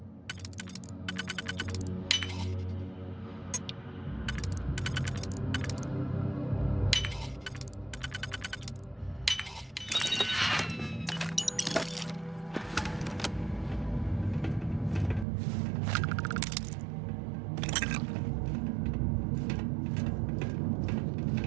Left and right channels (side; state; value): left; drops out; at 15.2 s